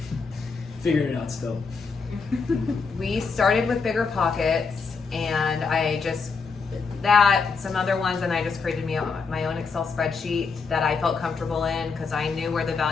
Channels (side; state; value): right; quieter; 4.9 dB